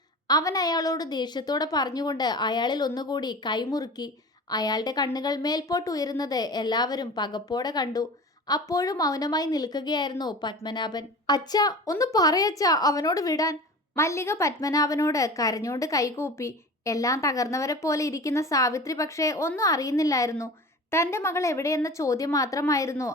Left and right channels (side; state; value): both; normal; correlation 0.36